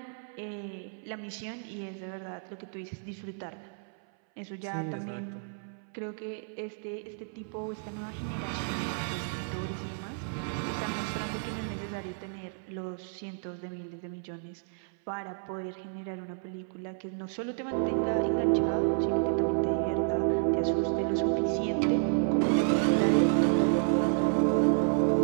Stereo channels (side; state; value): left; silent; 57 dB below the other